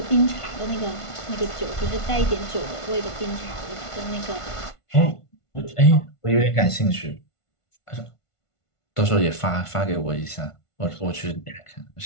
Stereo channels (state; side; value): late; right; 1.5 ms